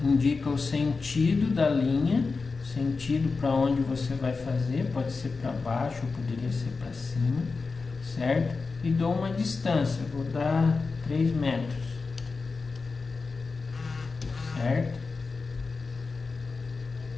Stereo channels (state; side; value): quieter; right; 4.3 dB